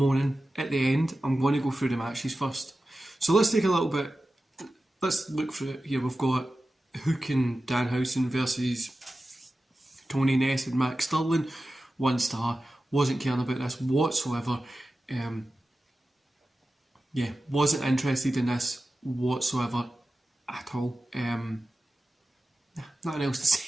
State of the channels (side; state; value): both; normal; correlation 0.94